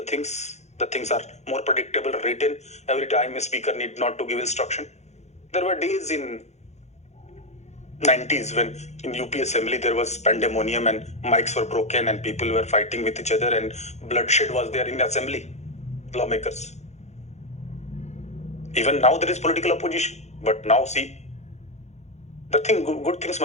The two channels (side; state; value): right; late; 0.33 ms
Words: things. The things are more predictable, written. Every time a speaker need not to give instruction. There were days in 90s when in UP Assembly there was pandemonium and mics were broken and people were fighting with each other and bloodshed was there in Assembly, lawmakers. Even now there is political opposition, but now see, the thing, good things